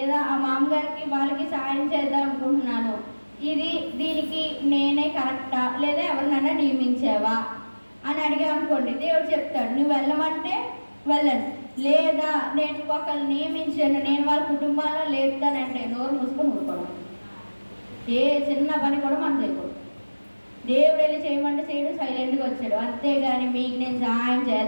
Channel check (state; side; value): inverted; both; correlation -1.00